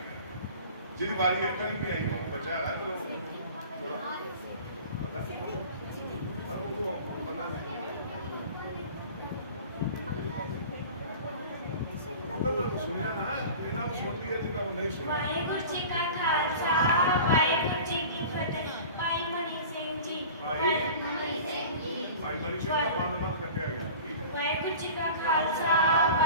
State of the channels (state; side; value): inverted; both; correlation -0.39